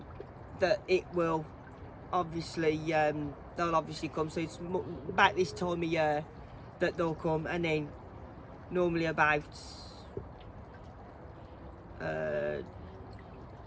it will obviously they'll obviously come. So it's about this time of year that they'll come, and then normally about July,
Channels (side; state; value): both; identical; correlation 1.00